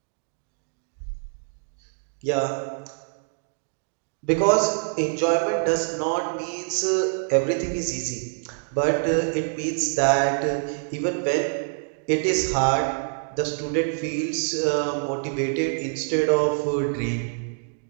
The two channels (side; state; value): left; silent; digital silence